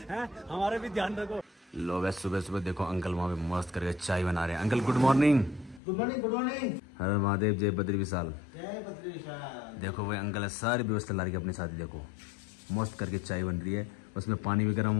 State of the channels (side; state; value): right; drops out; at 5.8 s